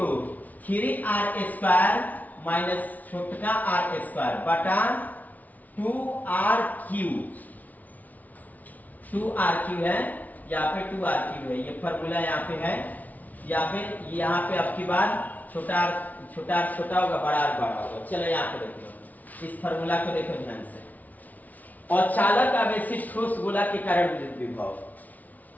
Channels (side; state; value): right; late; 0.076 ms